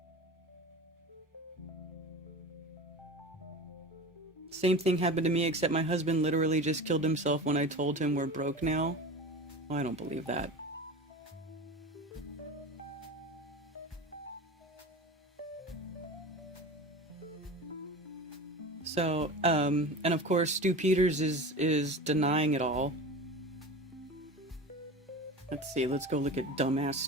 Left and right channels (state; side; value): normal; both; correlation 0.31